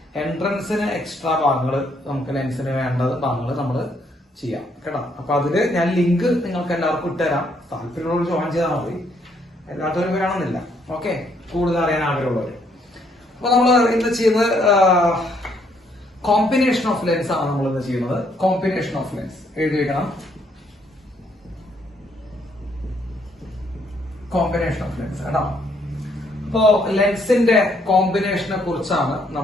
എൻട്രൻസിന് എക്സ്ട്രാ ഭാഗങ്ങൾ, നമുക്ക് ലെൻസിന് വേണ്ടത് ഭാഗങ്ങൾ നമ്മൾ ചെയ്യാം കേട്ടോ. അപ്പൊ അതില് ഞാൻ ലിങ്ക് നിങ്ങൾക്ക് എല്ലാവർക്കും ഇട്ടുതരാം. താല്പര്യമുള്ളവർ ജോയിൻ ചെയ്താൽ മതി, എല്ലാത്തവരും വേണമെന്നില്ല. ഓക്കെ, കൂടുതൽ അറിയാൻ ആഗ്രഹമുള്ളവർ. അപ്പൊ നമ്മൾ ഇന്ന് ചെയ്യുന്നത് കോമ്പിനേഷൻ ഓഫ് ലെൻസ് ആണ്. നമ്മൾ ഇന്ന് ചെയ്യുന്നത് കോമ്പിനേഷൻ ഓഫ് ലെൻസ്. എഴുതി വെക്കണം, കോമ്പിനേഷൻ ഓഫ് ലെൻസ് കേട്ടോ. അപ്പോ ലെൻസിന്റെ കോമ്പിനേഷനെ കുറിച്ചാണ്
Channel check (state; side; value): normal; both; correlation 0.70